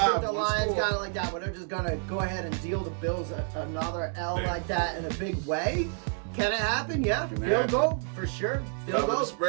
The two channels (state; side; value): silent; left; 58 dB below the other